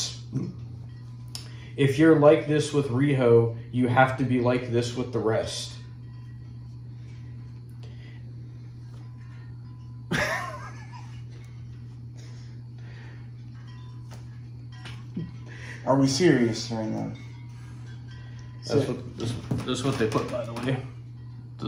If you're like this with Riho, you have to be like this with the rest. Are we serious right now? This is what they put, by the way.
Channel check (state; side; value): identical; both; correlation 1.00